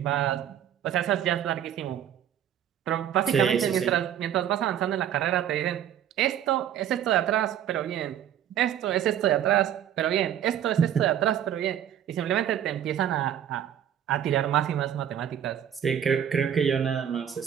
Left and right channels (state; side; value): quieter; left; 10.0 dB